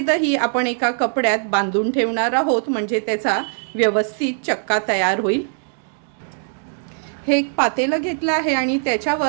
आपण एका कपड्यात बांधून ठेवणार आहोत, म्हणजे त्याचा व्यवस्थित चक्का तयार होईल। हे एक पातेलं घेतलं आहे आणि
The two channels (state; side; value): silent; left; digital silence